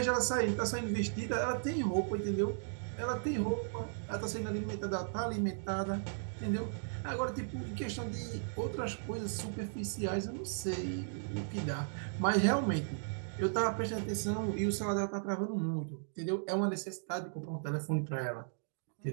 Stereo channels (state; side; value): silent; left; digital silence